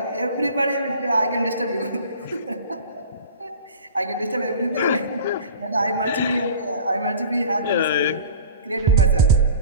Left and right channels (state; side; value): inverted; both; correlation -0.41